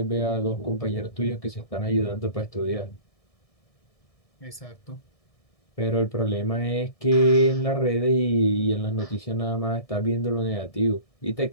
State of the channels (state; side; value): late; right; 1.6 ms